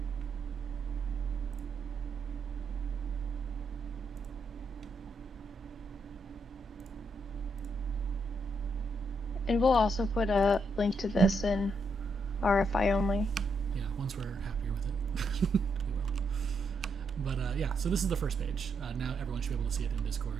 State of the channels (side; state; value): both; normal; correlation 0.78